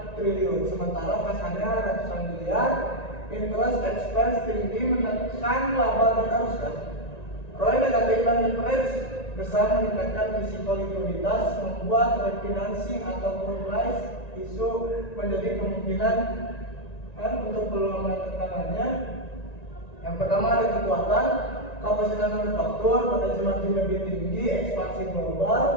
triliun, sementara kasarnya ratusan miliar. Interest expense tinggi menekan laba dan arus kas. ROI negatif dan leverage besar meningkatkan risiko likuiditas, membuat refinancing ataupun price issue menjadi kemungkinan untuk peluang tekanannya. Yang pertama ada kekuatan, kapasitas manufaktur, potensi margin lebih tinggi, ekspansi global,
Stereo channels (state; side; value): late; right; 1.9 ms